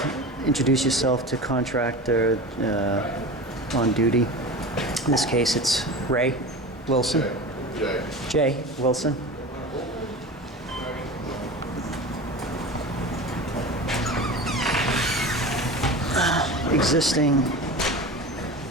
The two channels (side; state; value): both; normal; correlation 0.31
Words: introduce yourself to contractor on duty. In this case, it's Ray Wilson. Jay Wilson. Existing